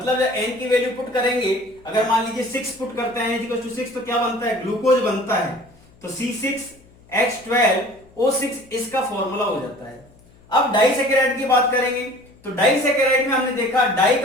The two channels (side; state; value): left; noise; hum, 28 dB below the sound